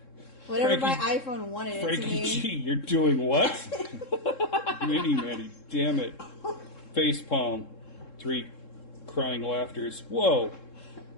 Whatever my Frankie- iPhone wanted it to Frankie mean. G, you're doing what? Mini Manny, damn it. Face palm. 3 crying laughters. Whoa.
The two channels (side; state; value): right; late; 3.7 ms